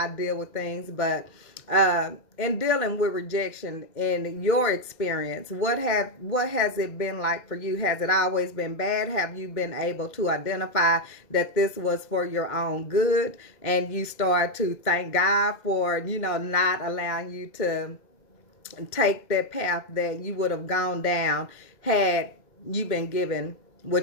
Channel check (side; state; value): right; late; 2.1 ms